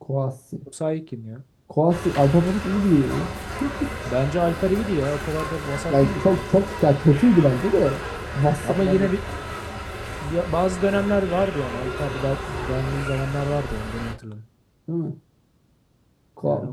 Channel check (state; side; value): identical; both; correlation 1.00